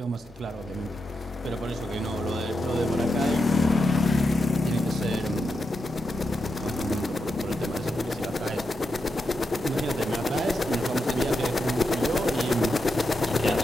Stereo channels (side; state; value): both; normal; correlation 0.86